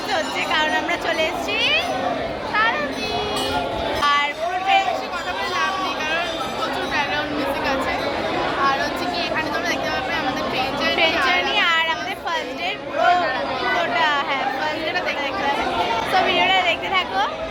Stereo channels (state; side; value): identical; both; correlation 1.00